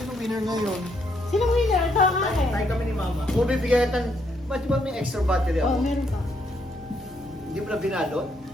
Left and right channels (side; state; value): both; normal; correlation 0.74